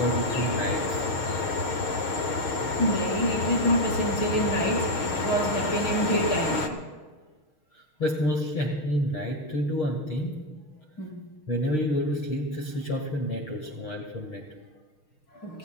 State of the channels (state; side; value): late; right; 6.5 ms